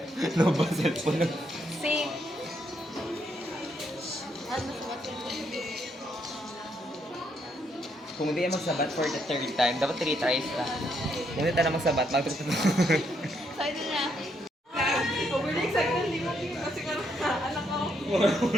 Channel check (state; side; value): normal; both; correlation 0.75